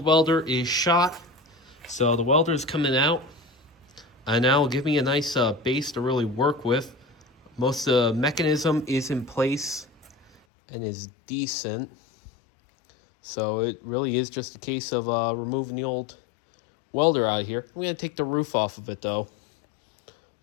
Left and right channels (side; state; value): right; drops out; at 10.4 s